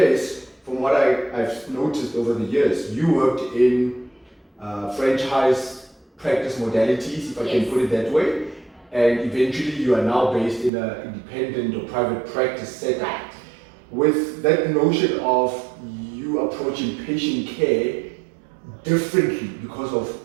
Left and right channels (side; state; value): left; drops out; at 10.7 s